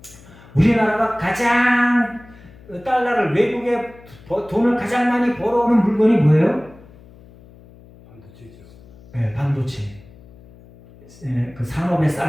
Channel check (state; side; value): noise; left; hum, 23 dB below the sound